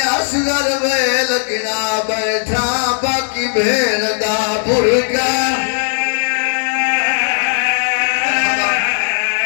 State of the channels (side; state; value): right; silent; 69 dB below the other